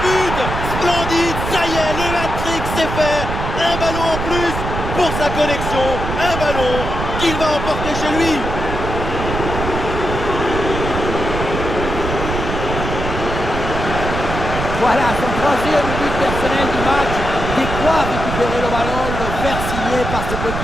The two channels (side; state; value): right; noise; rumble, 4 dB below the sound